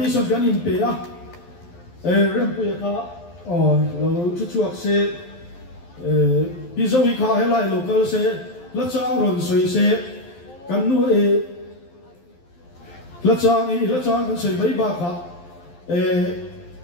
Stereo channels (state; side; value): late; right; 12 ms